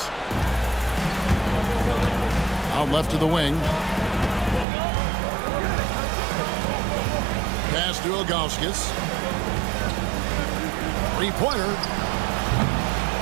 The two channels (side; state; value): left; drops out; at 4.7 s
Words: Out left to the wing. Pass to Ilgauskas. 3-pointer.